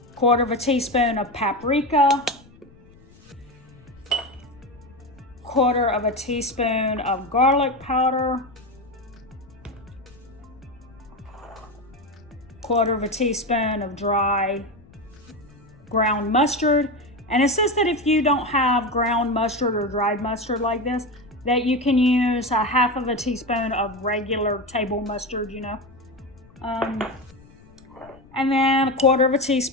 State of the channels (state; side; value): noise; left; rumble, 25 dB below the sound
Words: 1/4 teaspoon of paprika. 1/4 teaspoon of garlic powder. 1/4 teaspoon of dry ground mustard. And it says that if you don't have ground mustard or dried mustard like this, that you can use 1/2 teaspoon of regular table mustard, and then 1/4